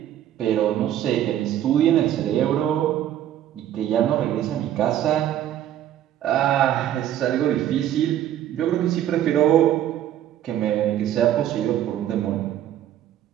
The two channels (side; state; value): left; quieter; 11.5 dB